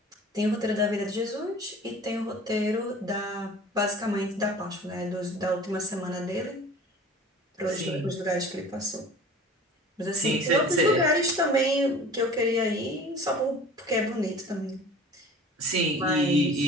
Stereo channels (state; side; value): normal; both; correlation 0.43